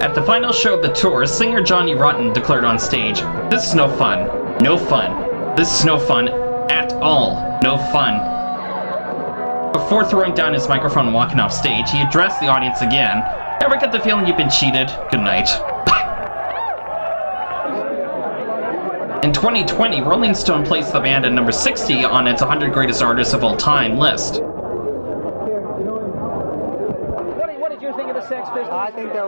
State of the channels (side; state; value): both; inverted; correlation -1.00